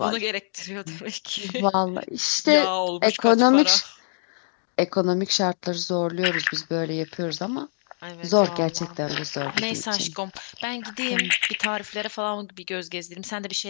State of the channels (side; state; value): right; silent; digital silence